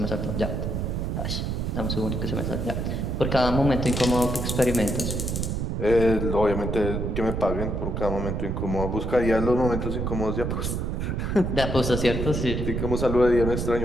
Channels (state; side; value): noise; right; rumble, 1 dB below the sound